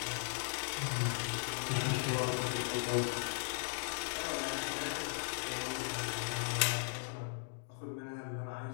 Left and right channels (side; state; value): right; silent; digital silence